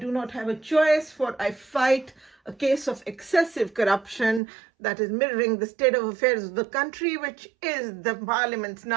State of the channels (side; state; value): left; drops out; at 4.4 s